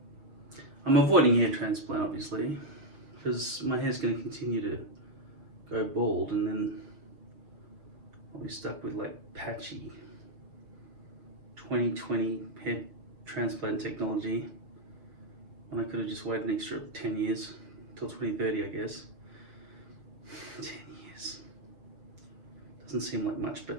I'm avoiding hair transplant, obviously, because my hair's going to continue to go bald, and then I'll be stuck with like patchy 2020 hair transplant technology, and I could have just waited an extra 10 years till 2030, I guess. 10 years doesn't seem like much, but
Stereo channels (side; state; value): left; late; 6.7 ms